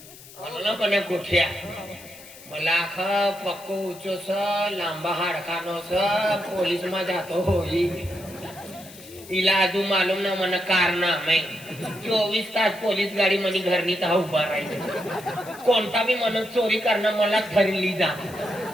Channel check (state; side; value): noise; left; hiss, 19 dB below the sound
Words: मला कोण्या गोठ्या मला पक्को उच्चो स लांबा हाडकानो स पोलीस मा जातो होई इला अजून मालूम ना मन कारनामे 24 तास पोलीस गाडी मनी घरनी ता उभा राहील कोणता बी मन चोरी करणं मला धरली जा